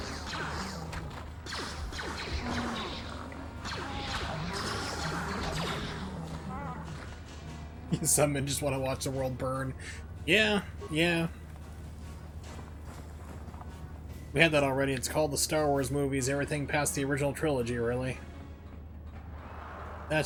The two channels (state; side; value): identical; both; correlation 1.00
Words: Some men just want to watch the world burn. Yeah. We had that already. It's called the Star Wars movies. Everything past the original trilogy, really.